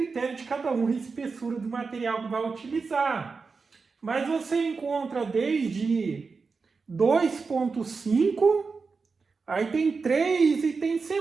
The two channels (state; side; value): quieter; left; 4.7 dB